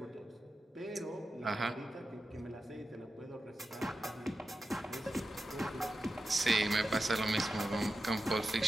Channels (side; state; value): both; normal; correlation 0.91